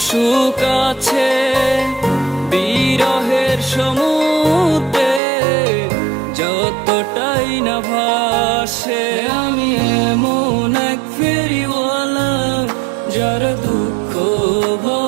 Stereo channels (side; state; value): left; drops out; at 5.2 s